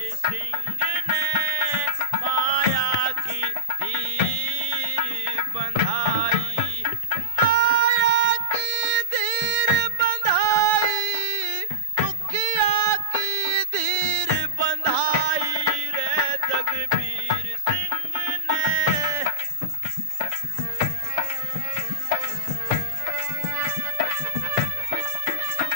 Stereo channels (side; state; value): left; late; 7.0 ms